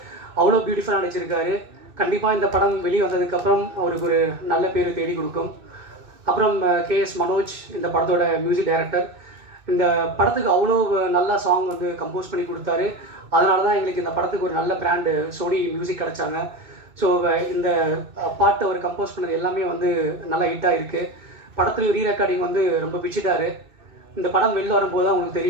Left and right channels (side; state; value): left; late; 2.6 ms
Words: அவ்வளோ பியூட்டிஃபுல்லாக நடிச்சிருக்காரு. கண்டிப்பாக இந்த படம் வெளியே வந்ததுக்கப்புறம் அவருக்கு ஒரு நல்ல பேர் தேடி கொடுக்கும். அப்புறம் KS மனோஜ் இந்த படத்தோட மியூசிக் டைரக்டர். இந்த படத்துக்கு அவ்வளோ நல்லா சாங் வந்து கம்போஸ் பண்ணி கொடுத்தாரு. அதனால தான் எங்களுக்கு இந்த படத்துக்கு ஒரு நல்ல பிராண்டு சோனி மியூசிக் கிடச்சாங்க. ஸோ இந்த பாட்டு அவர் கம்போஸ் பண்ணது எல்லாமே வந்து நல்லா ஹிட்டாக இருக்குது. படத்துலையும் ரீரெக்கார்டிங் வந்து ரொம்ப பிடிச்சிட்டாரு. இந்த படம் வெளில வரும்போது தான் உங்களுக்கு